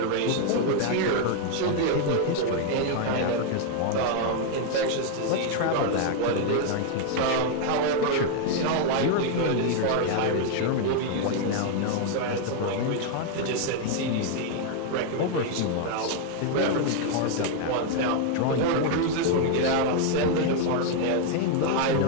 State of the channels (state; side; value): different; both; correlation 0.00